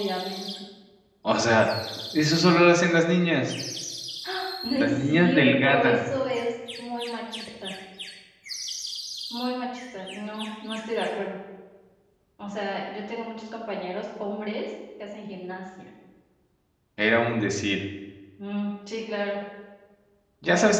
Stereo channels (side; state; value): both; identical; correlation 1.00